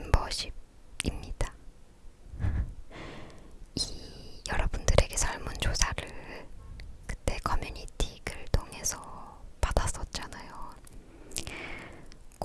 이 여러분들에게 설문조사를 그때 커뮤니티 글 통해서 받았었잖아요.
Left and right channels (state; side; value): identical; both; correlation 1.00